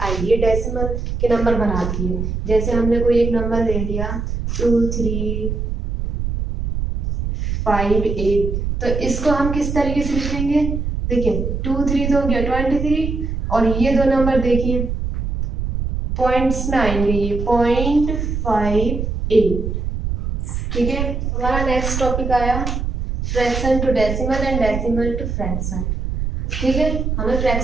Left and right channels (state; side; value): noise; right; rumble, 3 dB below the sound